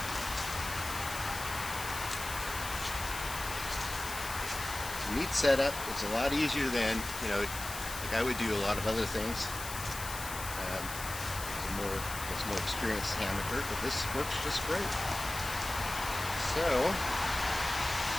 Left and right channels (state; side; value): noise; left; hiss, 8 dB below the sound